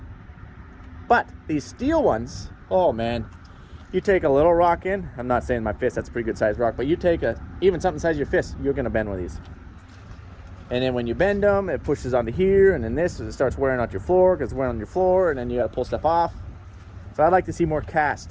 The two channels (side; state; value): both; identical; correlation 1.00